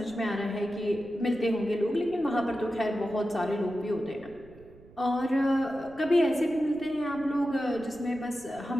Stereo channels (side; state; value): right; noise; rumble, 23 dB below the sound